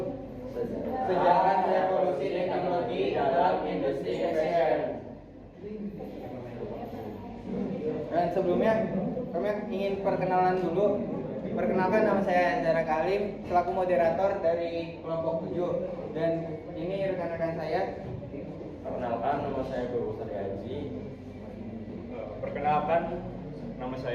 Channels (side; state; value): both; identical; correlation 1.00